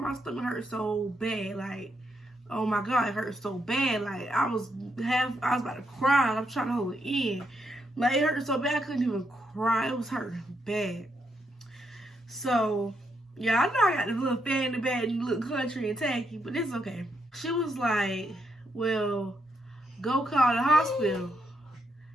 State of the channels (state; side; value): normal; both; correlation 0.78